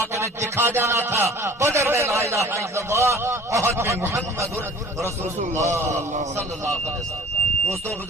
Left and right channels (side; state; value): both; normal; correlation 0.47